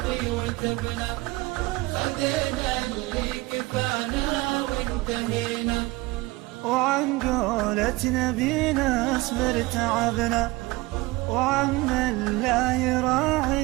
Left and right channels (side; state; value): left; quieter; 21.6 dB